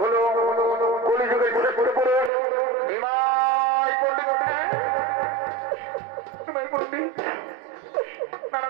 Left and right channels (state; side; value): drops out; left; at 2.3 s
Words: হলো কলিযুগের শ্রেষ্ঠ পুরুষ নিমাই পণ্ডিত। নিমাই পণ্ডিত